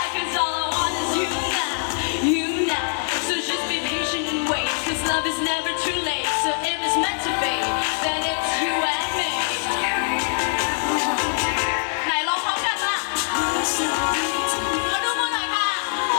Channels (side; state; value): right; silent; digital silence